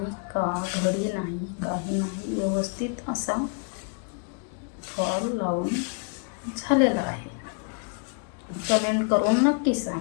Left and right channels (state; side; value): quieter; right; 39.9 dB